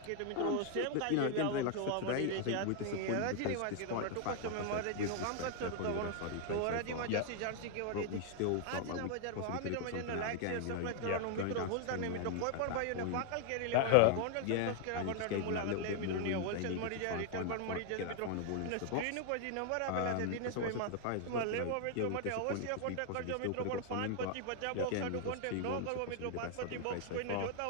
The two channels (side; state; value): both; different; correlation 0.00